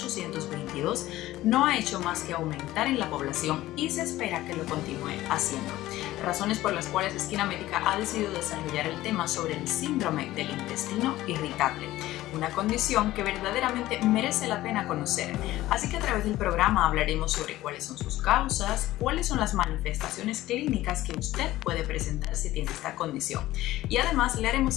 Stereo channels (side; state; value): right; quieter; 15.9 dB